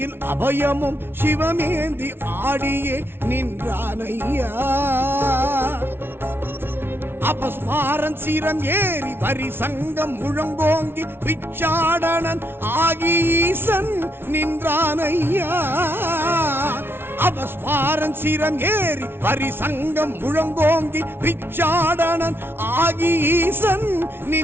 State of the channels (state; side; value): late; left; 0.11 ms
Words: அபயமும் சிவமேந்தி ஆடியே நின்றானையா. அபஸ்மாரன் சிரம் ஏறி வரி சங்கம் முழங்கோங்கி பிச்சாடனன் ஆகி ஈசன் நின்றானையா. அபஸ்மாரன் சிரம் ஏறி வரி சங்கம் முழங்கோங்கி பிச்சாடனன் ஆகி ஈசன்